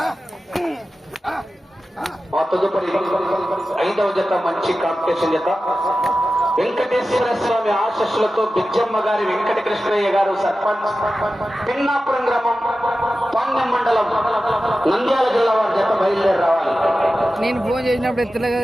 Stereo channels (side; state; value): both; normal; correlation 0.94